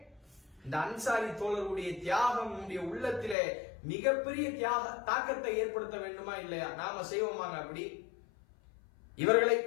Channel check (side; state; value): right; drops out; at 3.4 s